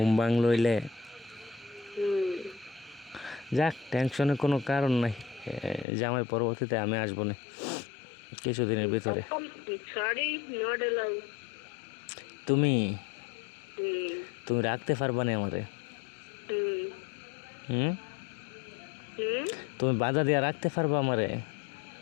ভাঙ লইলে। হুম। যাক, টেনশনের কোনো কারণ নাই। জামাই পরবর্তীতে আমি আসবো না কিছুদিনের ভিতরে। Sorry, not allow. তুমি হুম। তুমি রাখতে পারবা না আমারে? হুম। হুম? হুম। তুমি বাধা দিয়া রাখতে পারবা আমারে?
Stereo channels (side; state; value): right; drops out; at 5.9 s